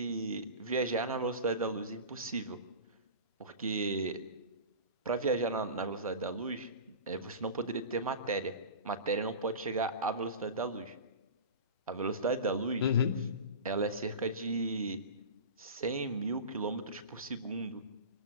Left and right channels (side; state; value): both; inverted; correlation -0.31